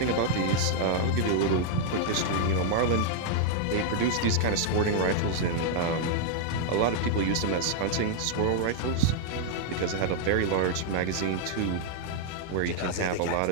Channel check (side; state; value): both; different; correlation -0.01